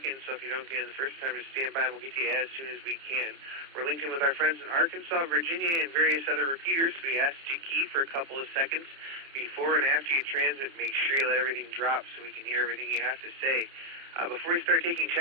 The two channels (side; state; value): left; late; 30 ms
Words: so if you don't get in the first time, just stand by and we'll get to you as soon as we can. We're linked in with our friends in Arkansas, Virginia, and various other repeaters, so we ask you to key for a couple of seconds before and after you transmit. Make sure you let everything drop so we can hear everything you have to say. Before we start taking